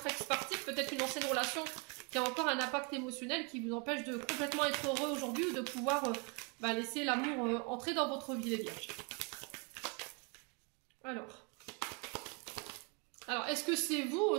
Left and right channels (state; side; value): quieter; left; 31.6 dB